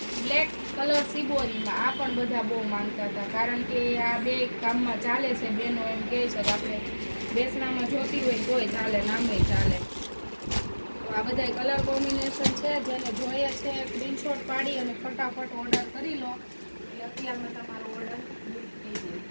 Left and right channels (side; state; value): both; inverted; correlation -1.00